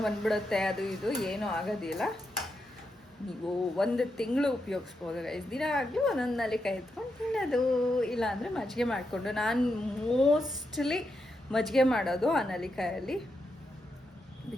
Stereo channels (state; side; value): normal; both; correlation 0.85